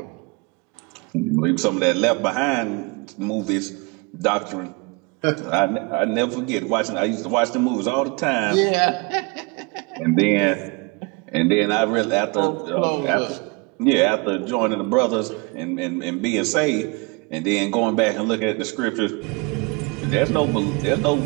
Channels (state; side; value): quieter; left; 28.3 dB